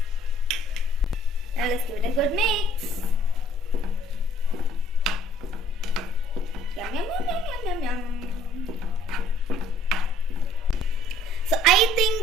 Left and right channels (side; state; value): both; normal; correlation 0.59